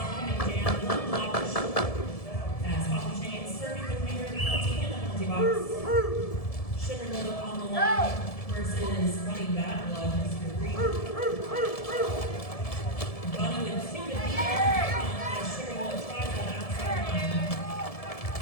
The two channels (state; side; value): late; right; 1.7 ms